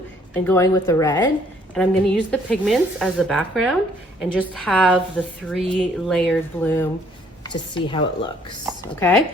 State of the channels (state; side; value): normal; both; correlation 0.63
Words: and going with the red, and I'm gonna use the pigments as the background and just have the 3 layered bloom to see how it looks, okay?